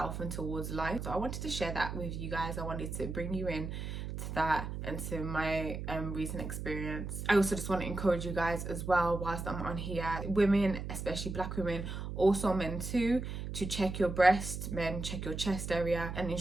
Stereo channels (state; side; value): noise; right; hum, 6 dB below the sound